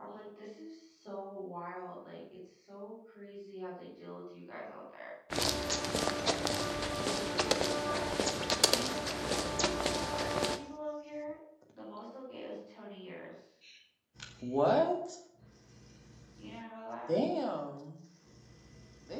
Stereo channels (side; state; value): both; identical; correlation 1.00